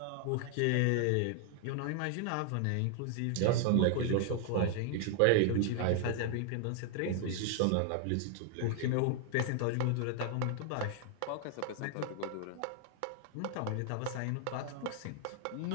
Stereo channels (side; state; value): both; different; correlation 0.00